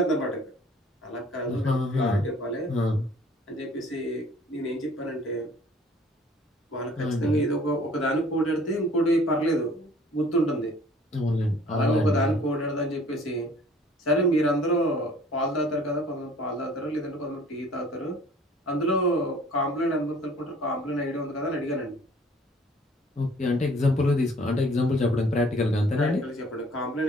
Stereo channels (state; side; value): normal; both; correlation 0.53